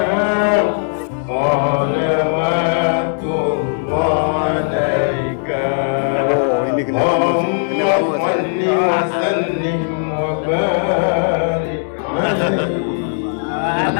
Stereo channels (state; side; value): silent; right; digital silence